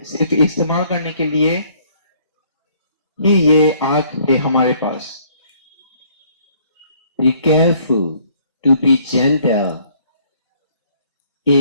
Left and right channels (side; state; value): both; inverted; correlation -0.62